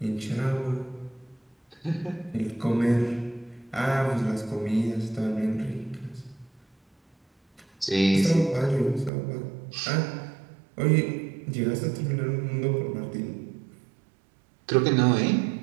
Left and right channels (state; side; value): drops out; left; at 9.1 s